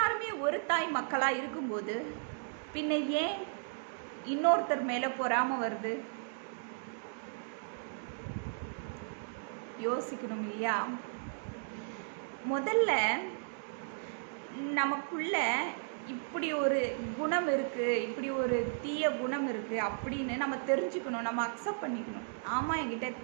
ஒரு தாய் மக்களாக இருக்கும்போது பின்ன ஏன் இன்னொருத்தர் மேலே பொறாம வருது? யோசிக்கணும் இல்லையா? முதல்ல நமக்குள்ள இப்படி ஒரு குணம் இருக்குது, இப்படி ஒரு தீய குணம் இருக்குது அப்படின்னு நம்ம தெரிஞ்சுக்கணும், நம்ம அக்செப்ட் பண்ணிக்கணும். ஆமாம், என்கிட்ட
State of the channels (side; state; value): left; silent; digital silence